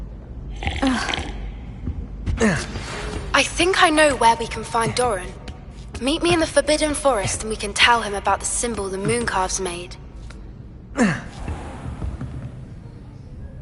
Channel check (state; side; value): identical; both; correlation 1.00